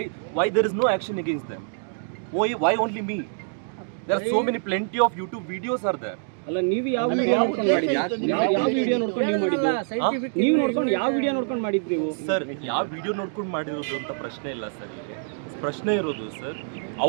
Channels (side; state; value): left; silent; digital silence